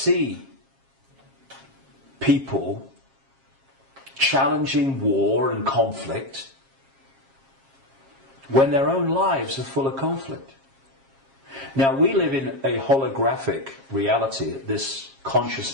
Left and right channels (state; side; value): late; left; 7.4 ms